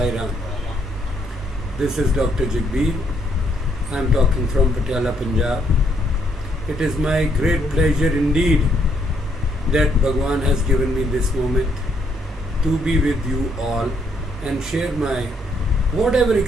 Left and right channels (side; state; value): both; normal; correlation 0.72